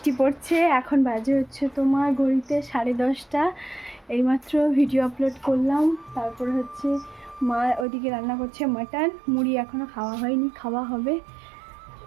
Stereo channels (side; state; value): left; drops out; at 7.9 s